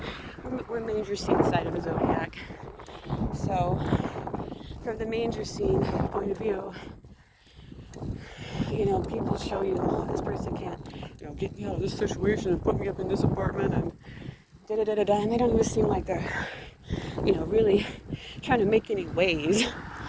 We're manger scene side of the zodiac. So, from the manger scene point of view, people show you, oh, this person can't, get me out of this situation and put me up in this apartment and da-da-da-da-da, and they don't even seem like they're, really trying to make any waves.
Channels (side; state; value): both; identical; correlation 1.00